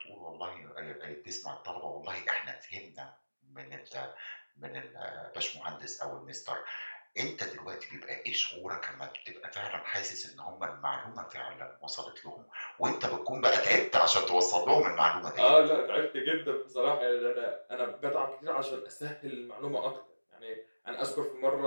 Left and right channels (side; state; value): both; inverted; correlation -1.00